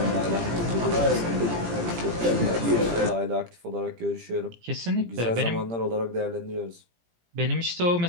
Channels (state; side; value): late; left; 17 ms